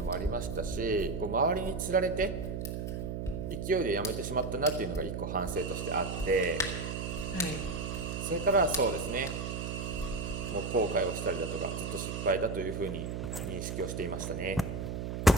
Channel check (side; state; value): right; noise; hum, 4 dB below the sound